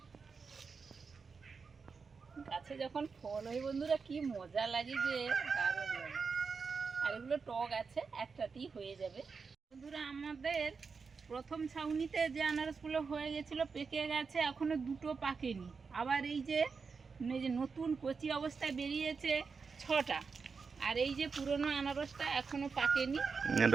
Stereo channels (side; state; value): left; quieter; 5.1 dB